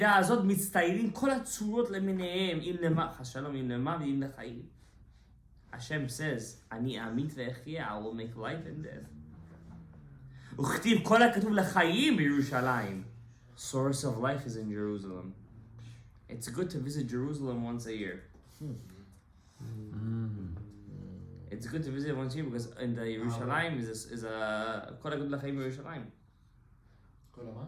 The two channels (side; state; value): both; identical; correlation 1.00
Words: הזאת מצטיירים כל הצורות למיניהם, אם למח השלום, אם למח ואם לחיים. Hashem says, אני אמית ואחיה, I will make life and death. וכתיב כל הכתוב לחיים בירושלים. Source of life is in Jerusalem. It's good to visit Jerusalem once a year. It's good to visit once a year because in the Yerushalayim is a כל הכתוב לחיים בירושלים.